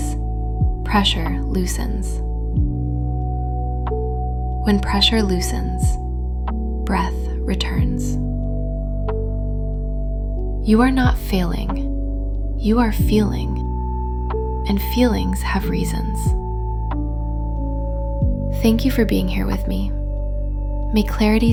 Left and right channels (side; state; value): both; identical; correlation 1.00